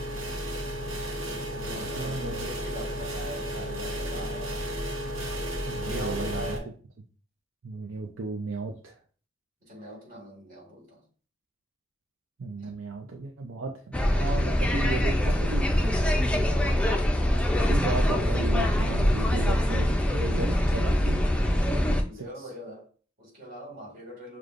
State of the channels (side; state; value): both; normal; correlation 0.82